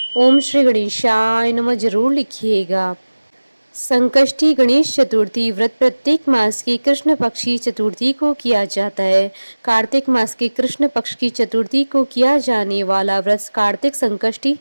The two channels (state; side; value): inverted; both; correlation -1.00